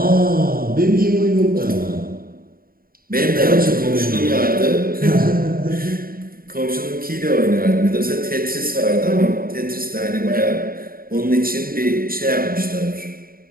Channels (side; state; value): left; late; 0.42 ms